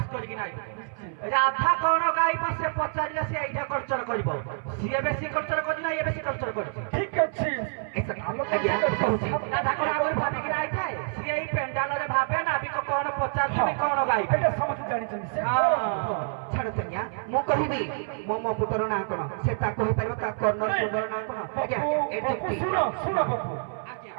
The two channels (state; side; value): silent; left; 60 dB below the other